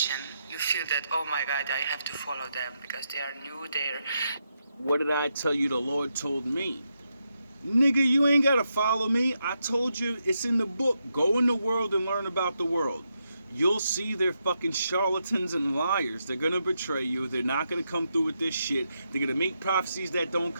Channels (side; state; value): both; inverted; correlation -0.83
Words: you feel that, oh my God, I have to follow them because they are new, they're... What did I tell you the Lord told me? Nigga, you ain't gotta follow me. I told you it's in the book. Go in the world and learn about the world. You'll see they're fucking charlatans and liars. They're gonna betray you. They're not gonna come through with this shit. They're gonna make prophecies that don't